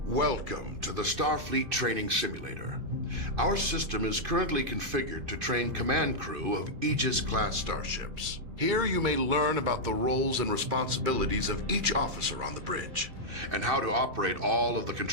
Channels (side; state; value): left; late; 2.5 ms